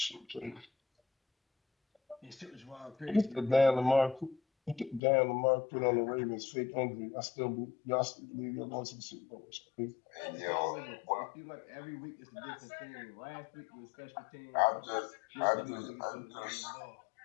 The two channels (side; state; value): right; drops out; at 5.0 s